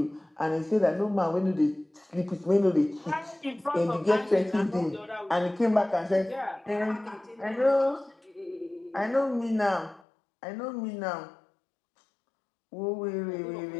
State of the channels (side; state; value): right; drops out; at 10.0 s